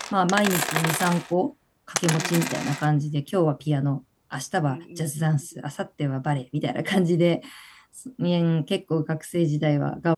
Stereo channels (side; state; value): both; identical; correlation 1.00